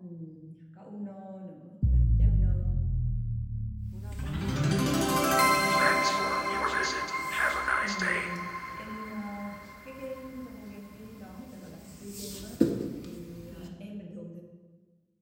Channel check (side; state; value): both; identical; correlation 1.00